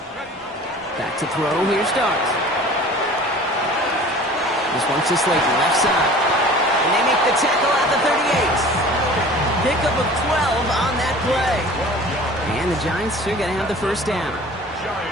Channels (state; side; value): normal; both; correlation 0.44